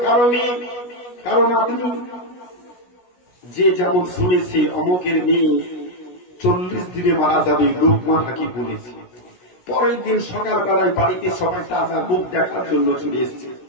কারো মেয়ে, কারো নাতনি, যে যেমন শুনেছে অমুকের মেয়ে 40 দিনে মারা যাবে, লোকমান হাকিম বলেছে। পরের দিন সকালবেলায় বাড়িতে সবাই তাজা মুখ দেখার জন্য চলে এসেছে।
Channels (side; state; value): right; late; 16 ms